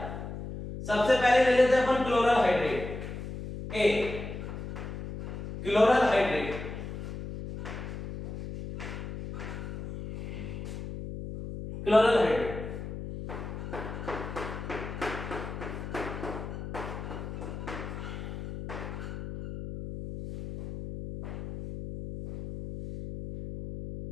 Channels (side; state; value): left; noise; hum, 8 dB below the sound